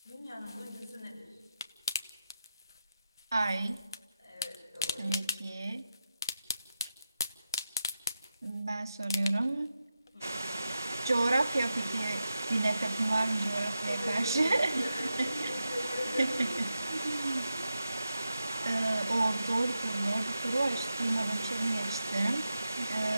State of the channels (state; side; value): inverted; both; correlation -0.89